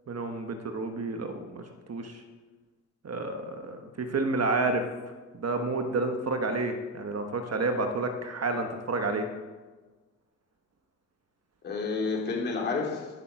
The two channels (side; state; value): both; normal; correlation 0.08